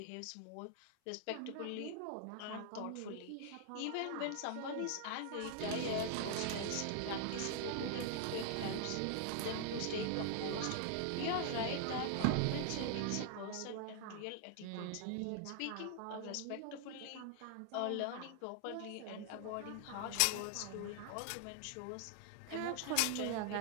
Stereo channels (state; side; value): different; both; correlation 0.00